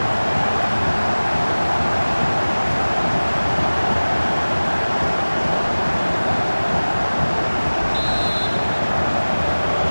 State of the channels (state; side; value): inverted; both; correlation -1.00